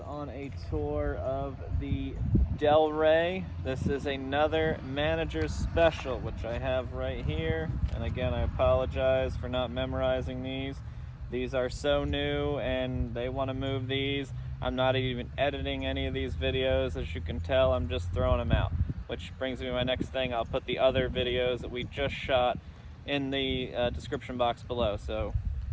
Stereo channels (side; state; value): both; identical; correlation 1.00